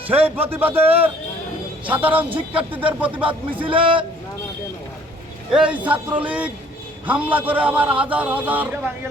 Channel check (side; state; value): both; normal; correlation 0.58